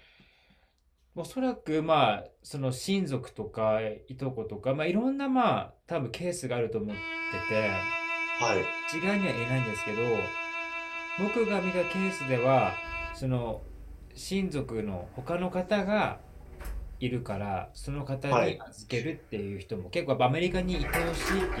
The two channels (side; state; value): both; identical; correlation 1.00